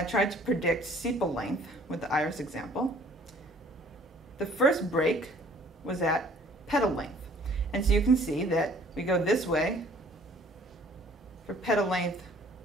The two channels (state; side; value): normal; both; correlation 0.55